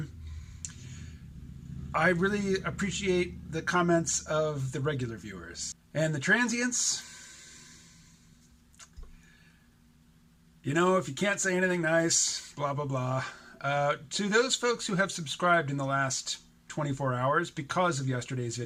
I really appreciate the comments of the regular viewers. And the transients, you know, if you can't say anything nice, blah, blah, blah. To those folks who have subscribed in the last 24 hours because of yesterday's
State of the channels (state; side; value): identical; both; correlation 1.00